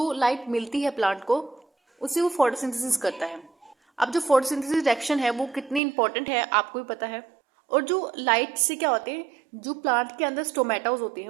लाइट मिलती है प्लांट को, उसे वो फोटोसिंथेसिस करता है। अब जो फोटोसिंथेसिस रिएक्शन है वो कितनी इंपॉर्टेंट है आपको भी पता है। और जो लाइट से क्या होते हैं, जो प्लांट के अंदर स्टोमेटास होते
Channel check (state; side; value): drops out; left; at 5.8 s